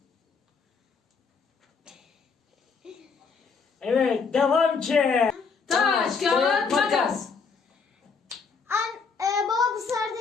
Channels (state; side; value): quieter; right; 5.2 dB